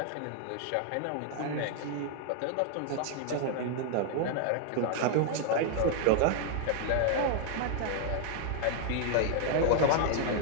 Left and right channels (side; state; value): both; different; correlation 0.00